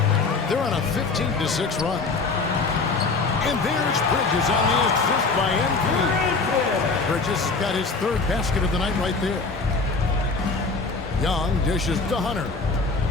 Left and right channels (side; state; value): right; quieter; 4.1 dB